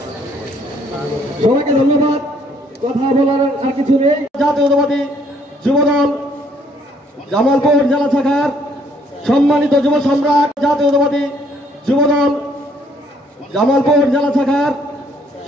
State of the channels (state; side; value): normal; both; correlation 0.65